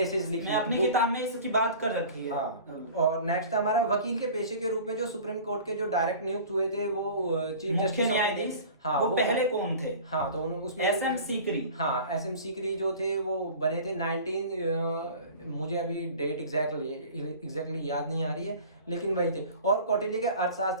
लिखी। मैं अपनी किताब में इसकी बात कर रखी है। हाँ। और नेक्स्ट हमारा वकील के पेशे के रूप में जो सुप्रीम कोर्ट के जो डायरेक्ट नियुक्त हुए थे वो चीफ जस्टिस न्यायाधीश, हाँ, वो पहले कौन थे? हाँ, तो उसमें एसएम सीकरी। हाँ, एसएम सीकरी जो थे वो बने थे 19 मुझे अभी डेट एग्जैक्टली याद नहीं आ रही है, लेकिन वही थे। और कौटिल्य के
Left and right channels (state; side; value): inverted; both; correlation -0.41